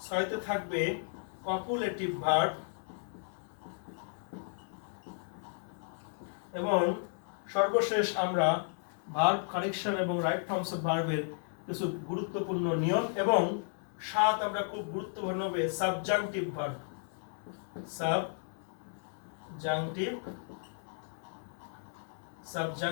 6তে থাকবে কপুলেটিভ ভার্ব, এবং সর্বশেষ আমরা ভার্ব কারেকশন এবং রাইট ফর্মস অফ ভার্বের কিছু গুরুত্বপূর্ণ নিয়ম, এবং 7 আমরা খুব গুরুত্বপূর্ণ হবে সাবজাংটিভ ভার্ব,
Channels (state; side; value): silent; right; 55 dB below the other